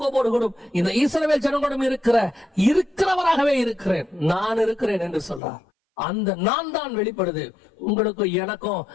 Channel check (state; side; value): drops out; right; at 5.4 s